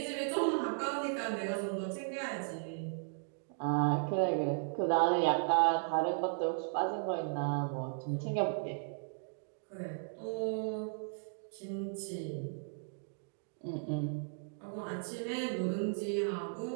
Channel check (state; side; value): silent; left; digital silence